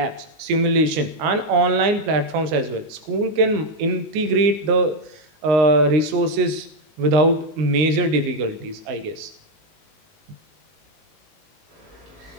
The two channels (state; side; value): late; left; 19 ms